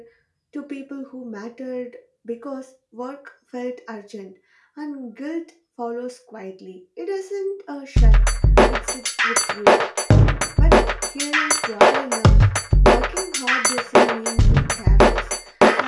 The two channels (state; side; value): identical; both; correlation 1.00